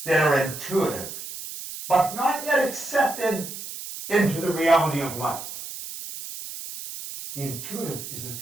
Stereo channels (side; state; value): right; noise; hiss, 10 dB below the sound